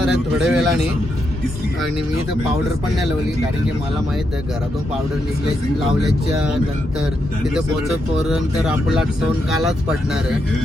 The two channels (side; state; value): both; normal; correlation 0.82